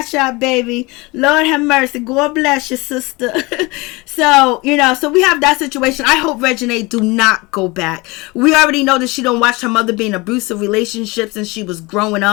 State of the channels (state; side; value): quieter; right; 24.3 dB